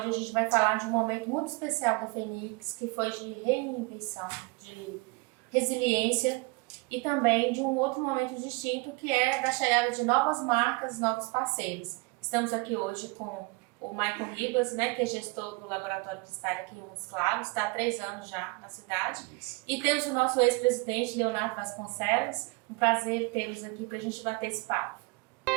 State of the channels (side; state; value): left; quieter; 26.3 dB